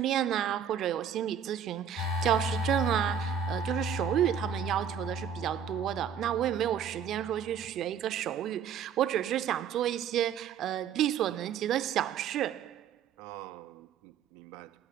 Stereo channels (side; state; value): left; quieter; 7.8 dB